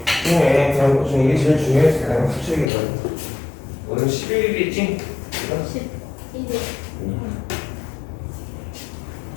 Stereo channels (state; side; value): drops out; right; at 2.7 s